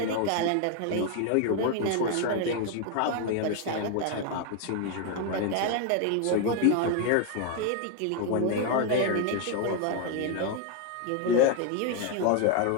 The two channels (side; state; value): both; different; correlation 0.01